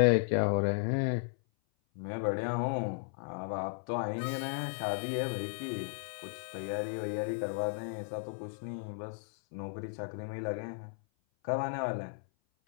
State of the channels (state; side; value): silent; right; 55 dB below the other